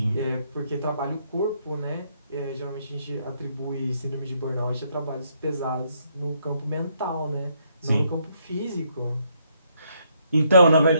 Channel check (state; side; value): inverted; both; correlation -0.73